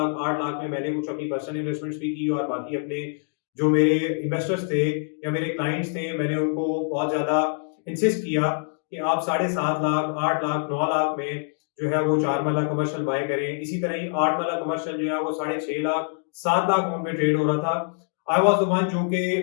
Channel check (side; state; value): right; silent; 55 dB below the other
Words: 8 लाख में मैंने कुछ अपनी पर्सनल इन्वेस्टमेंट्स भी की और बाकी अपने जो मेरे इन्वेस्टर्स थे या मेरे क्लाइंट्स थे, मैंने उनको बहुत ज्यादा इंसिस्ट किया कि आप 7.5 लाख 8 लाख 9 लाख में जो है वो 4 मरला कमर्शियल बाय करें। इसी तरह ही 8 मरला कमर्शियल जो है वो 6.5 लाख 7 लाख में ट्रेड हो रहा था। आई वाज द वन जो कि